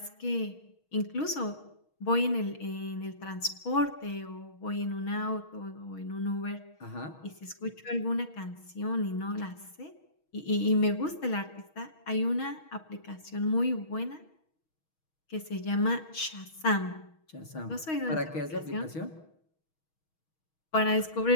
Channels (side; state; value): right; late; 6.3 ms